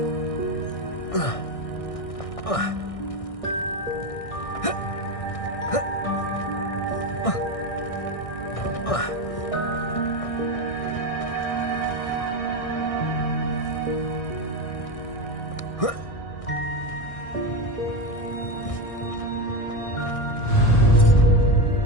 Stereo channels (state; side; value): late; right; 1.6 ms